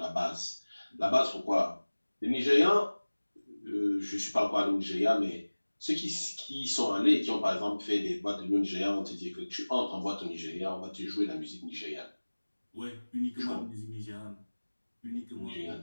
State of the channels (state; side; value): inverted; both; correlation -1.00